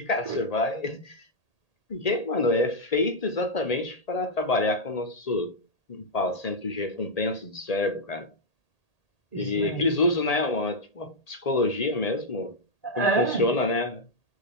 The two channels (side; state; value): right; late; 1.8 ms